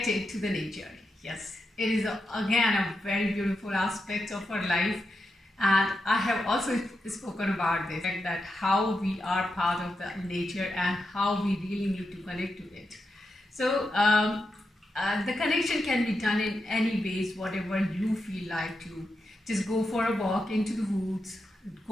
to the nature. Yes, it is again a very beautiful aspect of our life, and I have also spoken about this, that how we are part of the nature and how we really need to connect to it. So the connection can be done in any ways, whatever you feel like to. Just go for a walk into the woods,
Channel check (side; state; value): both; normal; correlation 0.87